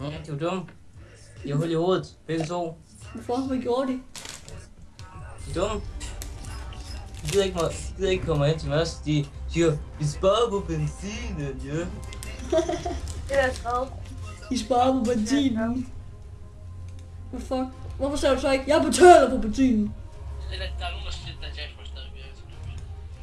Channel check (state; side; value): identical; both; correlation 1.00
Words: Ja, de var dumme. De har hul i hovedet, begge to. Hvorfor? Hvad gjorde de? De er dumme. De gider ikke komme hen til os. De siger, vi sparer på benzinen, ja. Det er skrevet. De sparer på benzinen. Hvad fuck? Hvorfor sagde du så ikke, jeg betaler på benzinen?